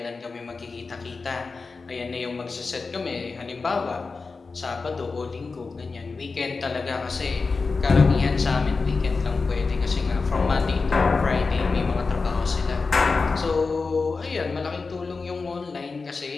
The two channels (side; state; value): right; quieter; 4.3 dB